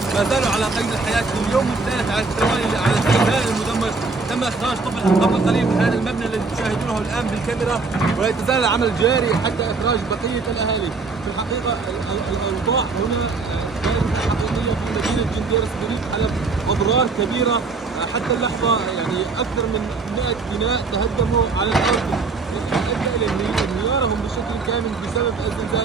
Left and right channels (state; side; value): quieter; left; 4.2 dB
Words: ما زالوا على قيد الحياة في اليوم الثالث على التوالي على السكان المدمر. تم إخراج طفل قبل قليل من هذا المبنى الذي تشاهدونه الآن بالكاميرا، ولا يتزال العمل جاري حتى إخراج بقية الأهالي. في الحقيقة الأوضاع هنا كانت حقيقية في مدينة جنديرس بريف حلب، أضرار كبيرة حتى اللحظة، يعني أكثر من 100 بناء تهدموا على الأرض، أدى إلى انهيارهم بشكل كامل بسبب